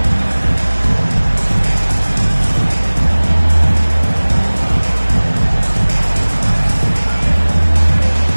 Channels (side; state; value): both; inverted; correlation -1.00